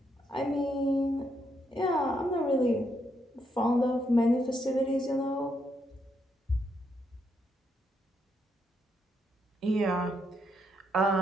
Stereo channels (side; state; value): both; normal; correlation 0.78